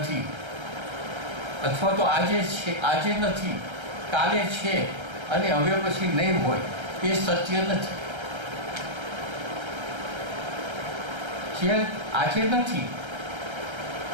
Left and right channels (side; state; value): left; late; 1.3 ms